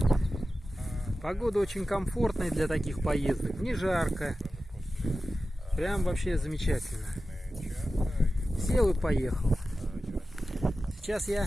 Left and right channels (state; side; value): normal; both; correlation 0.94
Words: все. Погода очень комфортная для таких поездок, не жарко. Прям вообще замечательно. Сел и поехал. Сейчас я